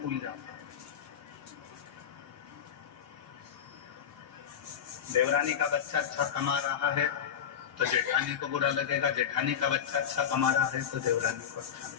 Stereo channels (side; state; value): right; quieter; 8.3 dB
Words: फूल जाता है। देवरानी का बच्चा अच्छा कमा रहा है तो जेठानी को बुरा लगेगा, जेठानी का बच्चा अच्छा कमा रहा है तो देवरानी को अच्छा